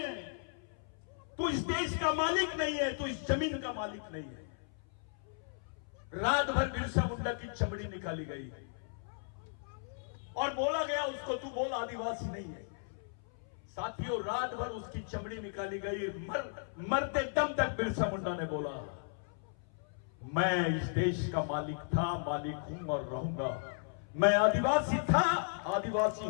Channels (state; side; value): silent; right; 54 dB below the other